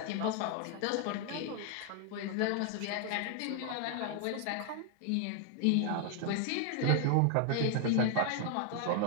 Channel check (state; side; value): different; both; correlation 0.00